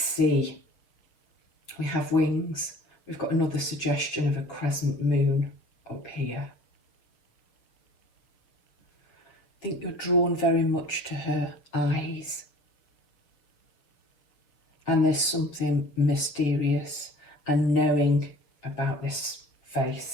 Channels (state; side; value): late; right; 6.9 ms